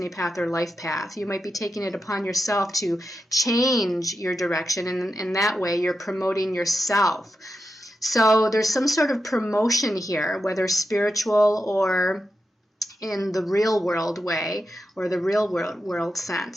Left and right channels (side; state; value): both; normal; correlation 0.88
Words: path or life path. You might be taking it upon yourself to change your direction, and in that way you're promoting yourself. So there's some sort of promotion here, whether spiritual or in the real world way or the real world